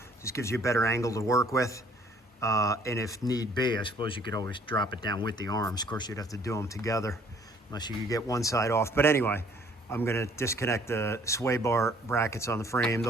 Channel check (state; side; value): normal; both; correlation 0.59